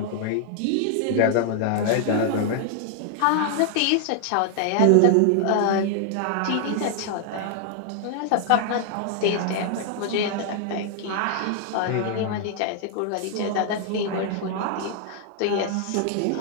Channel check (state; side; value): different; both; correlation 0.00